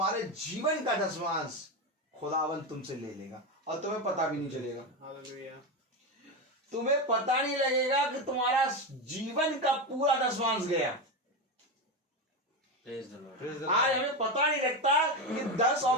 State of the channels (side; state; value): both; normal; correlation 0.15